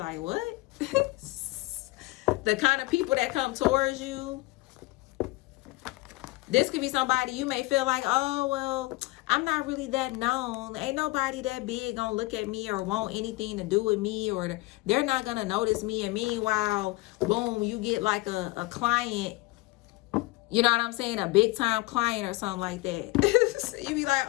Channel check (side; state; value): right; quieter; 21.5 dB